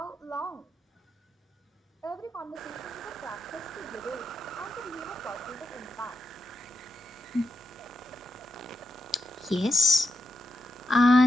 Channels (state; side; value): normal; both; correlation 0.85